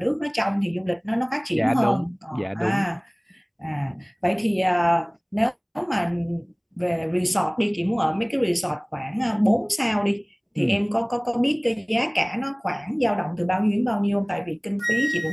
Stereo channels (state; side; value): identical; both; correlation 1.00